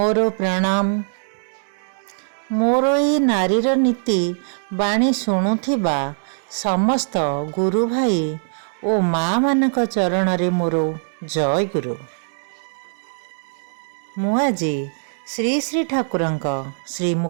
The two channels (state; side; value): silent; left; digital silence